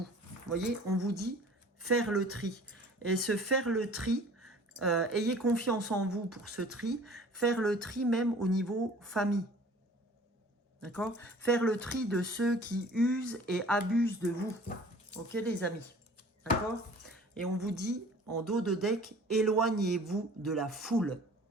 Vous voyez, on vous dit faire le tri. Et se faire le tri, ayez confiance en vous pour ce tri, faire le tri même au niveau famille. D'accord? Faire le tri de ceux qui usent et abusent de vous. Ok, les amis? D'accord? Et on vous dit, en dos de deck, éloignez-vous de la foule.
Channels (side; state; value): both; normal; correlation 0.48